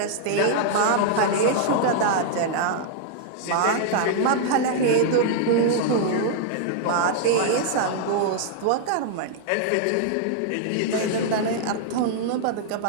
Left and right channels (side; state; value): both; different; correlation -0.01